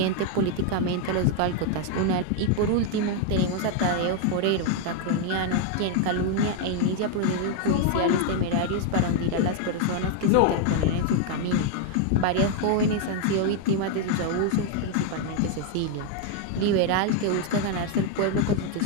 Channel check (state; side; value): different; both; correlation 0.01